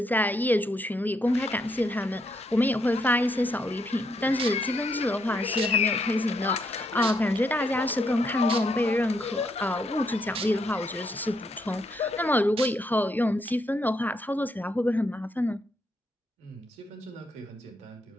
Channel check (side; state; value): both; normal; correlation 0.76